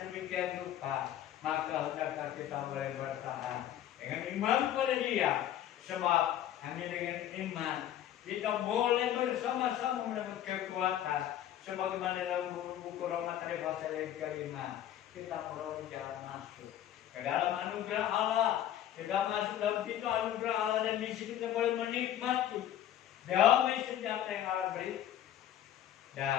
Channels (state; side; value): quieter; right; 11.5 dB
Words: demikian rupa, maka hendaklah kita boleh bertahan dengan iman pada Dia. Sebab hanya dengan iman kita boleh bersama-sama mendapat kekuatan. Sebagaimana dalam buku Roma tadi pasal yang kelima, kita perlu jalan masuk ke dalam anugerah Allah. Kita masuk dalam pintu anugerah Allah dan di sini kita boleh menikmati damai senjata yang Allah beri.